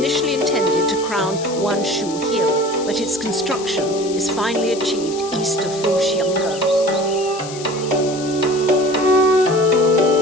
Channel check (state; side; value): noise; left; hiss, 13 dB below the sound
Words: intended to crown Wanshu Hill, but its construction is finally achieved east of Foshiangge.